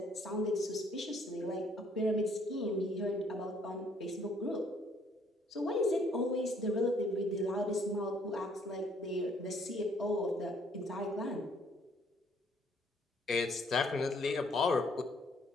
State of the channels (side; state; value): both; normal; correlation 0.64